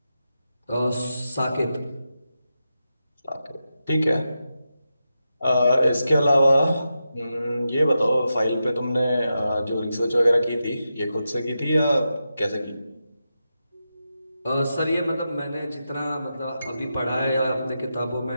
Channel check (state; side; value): inverted; both; correlation -0.89